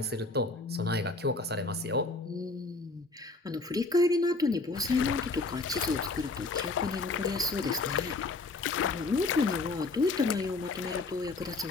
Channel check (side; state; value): right; quieter; 3.4 dB